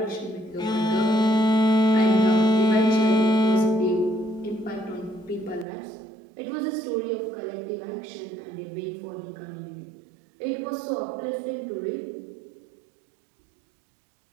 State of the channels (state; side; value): drops out; left; at 5.7 s